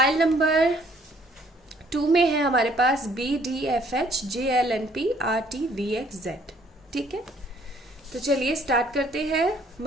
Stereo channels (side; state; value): both; normal; correlation 0.62